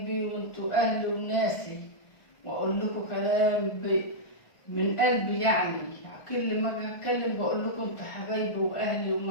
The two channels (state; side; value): late; right; 1.4 ms